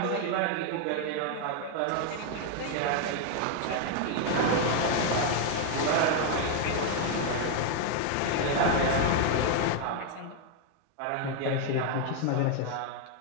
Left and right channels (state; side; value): different; both; correlation 0.00